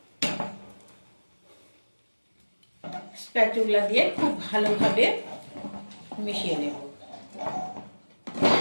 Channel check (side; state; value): both; inverted; correlation -1.00